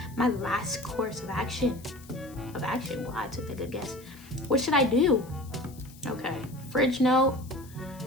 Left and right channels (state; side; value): noise; left; hiss, 22 dB below the sound